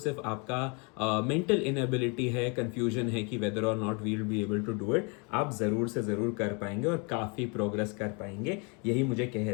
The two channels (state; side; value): quieter; right; 32.7 dB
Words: आपका मेंटल इनएबिलिटी है, कंफ्यूजन है कि वेदर और not we will be able to do it, आप ज़रूर से ज़रूर कर पाएंगे और काफ़ी प्रोग्रेस कर पाएंगे। यही मुझे कह